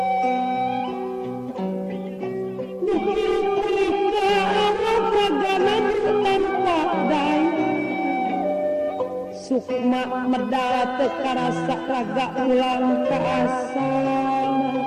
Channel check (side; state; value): both; identical; correlation 1.00